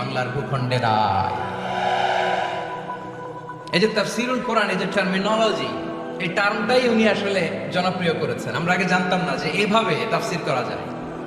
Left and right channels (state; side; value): identical; both; correlation 1.00